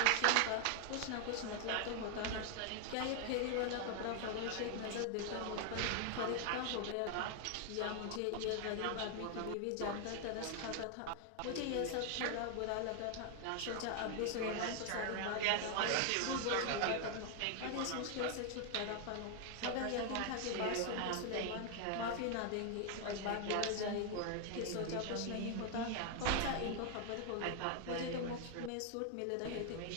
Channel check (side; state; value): both; different; correlation 0.00